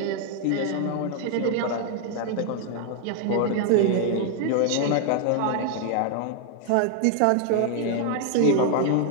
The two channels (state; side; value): different; both; correlation 0.00